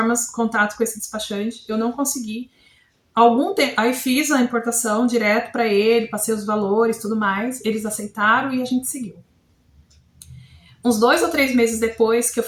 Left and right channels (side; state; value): both; identical; correlation 1.00